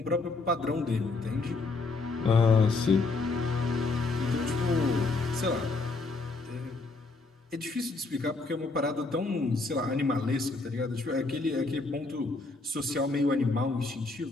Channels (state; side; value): quieter; right; 3.6 dB